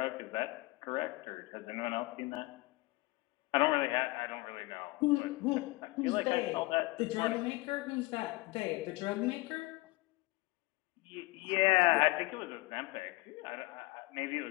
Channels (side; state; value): right; quieter; 22.1 dB